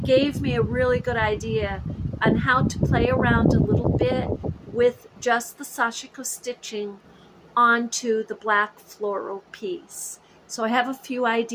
gave me a really good idea on how to play around a little bit with just the sashiko stitching onto the black floral piece. So I have a few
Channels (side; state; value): both; identical; correlation 1.00